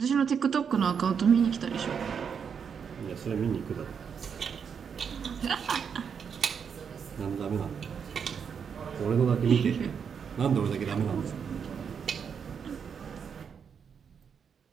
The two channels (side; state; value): left; quieter; 6.9 dB